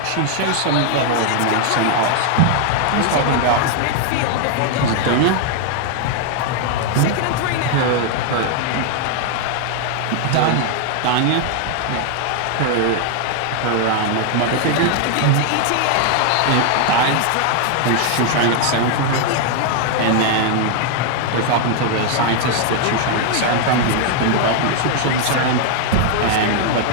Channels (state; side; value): different; both; correlation 0.00